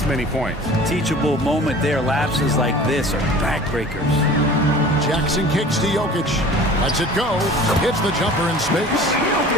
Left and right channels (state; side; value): normal; both; correlation 0.43